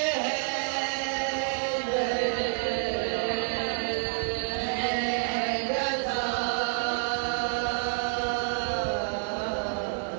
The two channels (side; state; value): left; silent; 56 dB below the other